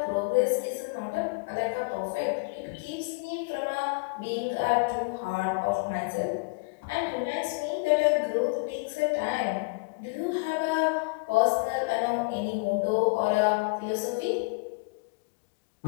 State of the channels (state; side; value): quieter; right; 31.0 dB